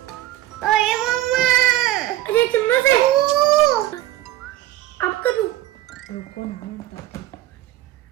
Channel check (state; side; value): quieter; left; 15.4 dB